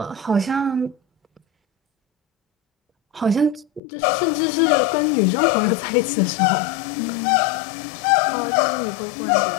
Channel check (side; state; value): right; drops out; at 3.8 s